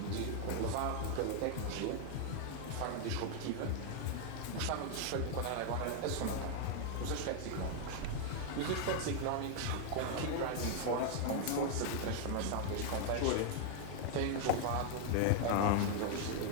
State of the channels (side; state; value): both; different; correlation 0.00